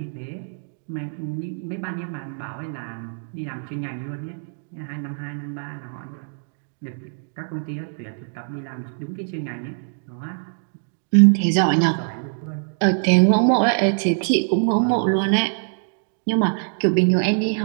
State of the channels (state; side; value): silent; left; 61 dB below the other